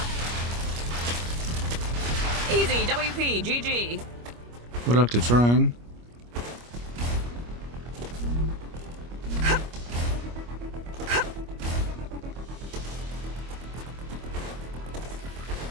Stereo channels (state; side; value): late; left; 25 ms